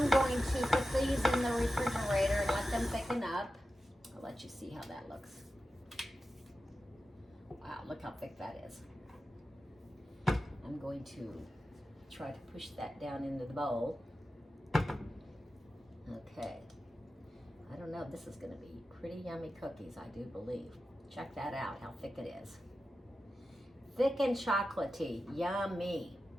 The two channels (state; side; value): normal; both; correlation 0.92